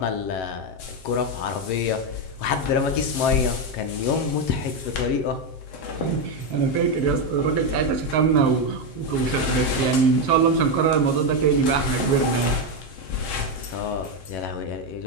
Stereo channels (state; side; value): late; right; 7.6 ms